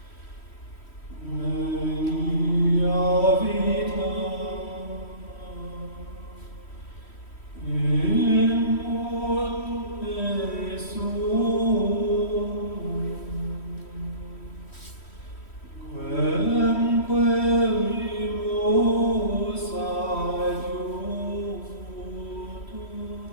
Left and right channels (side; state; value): right; late; 3.1 ms